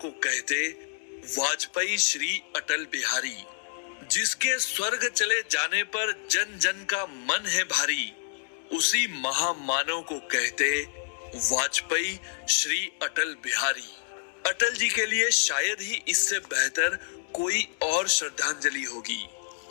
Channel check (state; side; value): silent; right; digital silence